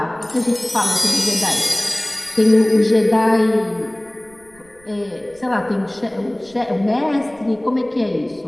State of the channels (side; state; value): right; noise; rumble, 30 dB below the sound